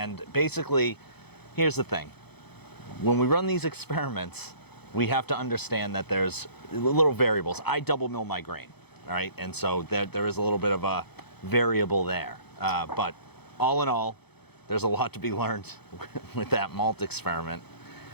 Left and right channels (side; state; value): right; late; 0.98 ms